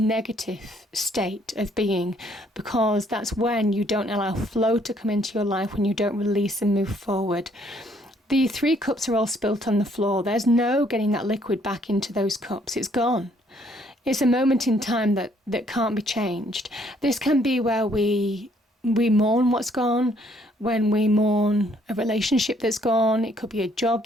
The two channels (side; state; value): both; normal; correlation 0.66